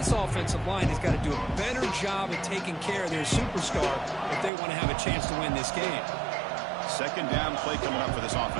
offensive line has got to do a better job of taking care of their superstar if they want to have a chance to win this game. Second down play coming up for this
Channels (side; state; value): left; drops out; at 4.5 s